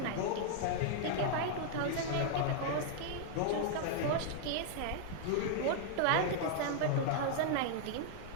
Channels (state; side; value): different; both; correlation -0.01